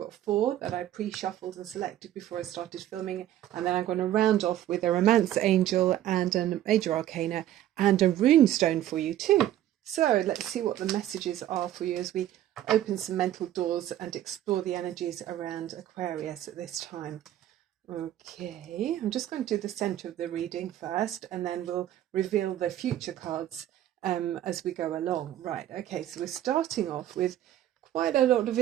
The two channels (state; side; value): quieter; left; 12.5 dB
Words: 4 that I pre-shuffled and selected before I started filming, and then I'm going to round off with a romance angel and a major arcana and a rune stone for you too. So let's see what the messages are for you as we open some mental doors and explore the energies around Aquarius at this time. Okay, I'm just going to do the center of the reading first, and then we'll reveal the future cards as we go along. Right, okay, so we're starting off with quite a lot of